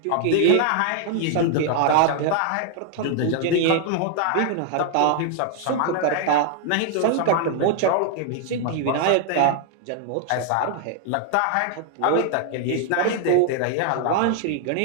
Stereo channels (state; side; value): different; both; correlation 0.00